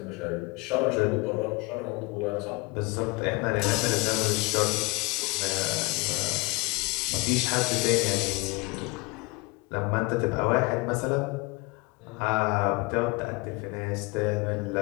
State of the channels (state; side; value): quieter; right; 26.4 dB